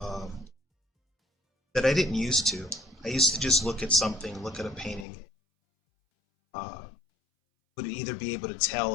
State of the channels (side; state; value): right; drops out; at 5.1 s